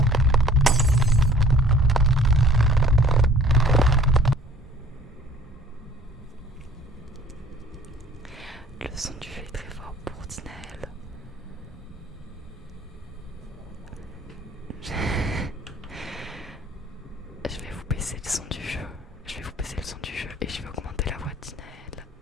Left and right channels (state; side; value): normal; both; correlation 0.53